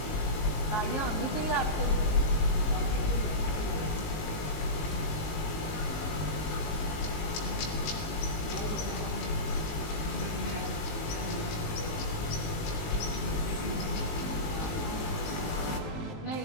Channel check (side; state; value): right; late; 19 ms